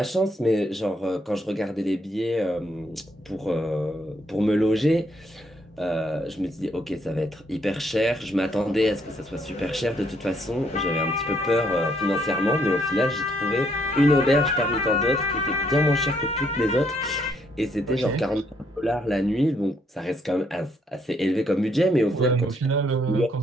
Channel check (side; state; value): both; normal; correlation 0.71